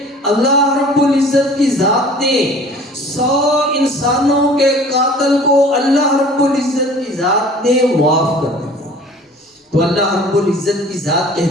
اللہ رب العزت کی ذات نے 100 انسانوں کے قاتل کو اللہ رب العزت کی ذات نے معاف کر دیا۔ تو اللہ رب العزت کی ذات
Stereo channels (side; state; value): both; normal; correlation 0.47